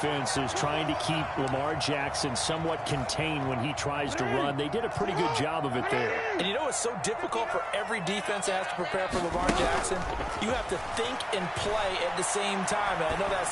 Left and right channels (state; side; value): identical; both; correlation 1.00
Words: is trying to keep Lamar Jackson somewhat contained when he tries to run. They did a pretty good job of it there. And you know it's so difficult for every defense that has to prepare for Lamar Jackson? You have to think and play at the same time. And I know that